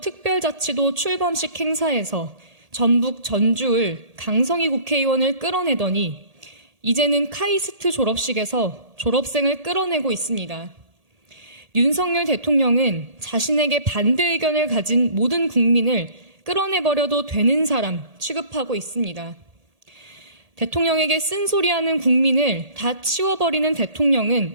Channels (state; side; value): late; left; 1.8 ms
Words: 특별자치도 출범식 행사에서 전북 전주을 강성희 국회의원을 끌어내더니 이제는 카이스트 졸업식에서 졸업생을 끌어내고 있습니다. 윤석열 대통령은 자신에게 반대 의견을 가진 모든 국민을 끌어내버려도 되는 사람 취급하고 있습니다. 대통령에게 쓴소리하는 국민을 다 치워버리는 대통령은